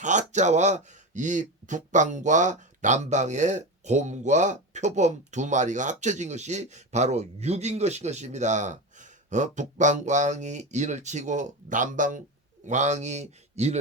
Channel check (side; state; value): both; normal; correlation 0.21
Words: 이 북방과 남방의 곰과 표범 두 마리가 합쳐진 것이 바로 6인 것입니다. 북방왕이 인을 치고 남방왕이